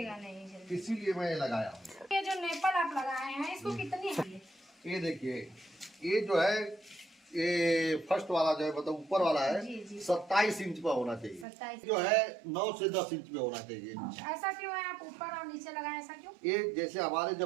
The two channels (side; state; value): left; drops out; at 11.5 s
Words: इसीलिए मैं ये लगाया हूँ। ये जो नेपल आप लगाए हैं इसको कितनी है? ये देखिए, ये जो है ये फर्स्ट वाला जो है मतलब ऊपर वाला है जी, जी। 27 इंच पे होना चाहिए। 27 जो है 9 से 10 इंच पे होना चाहिए। ऐसा क्यों है, आप ऊपर और नीचे लगाए, ऐसा क्यों? ये जैसे हमारे